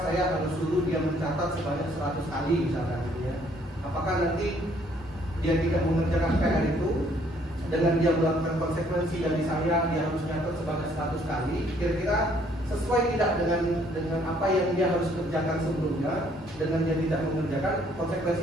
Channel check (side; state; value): both; normal; correlation 0.64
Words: saya harus suruh dia mencatat sebanyak 100 kali misalkan gitu ya. Apakah nanti dia tidak mengerjakan PR itu dengan dia melakukan konsekuensi dari saya dia harus mencatat sebanyak 100 kali, kira-kira sesuai tidak dengan apa yang dia harus kerjakan sebelumnya, dengan dia tidak mengerjakan,